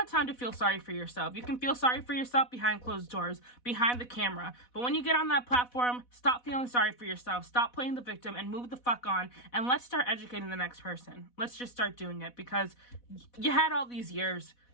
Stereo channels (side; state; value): right; late; 4.1 ms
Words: time to feel sorry for yourself. You can feel sorry for yourself behind closed doors, behind the camera. But when you get on that platform, stop feeling sorry for yourself. Stop playing the victim and move the fuck on. And let's start educating the next person. Let's just start doing it, because you had all these years.